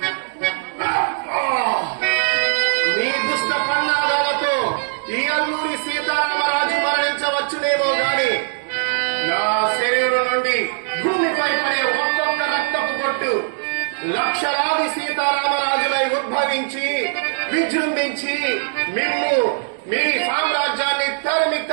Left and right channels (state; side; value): silent; left; digital silence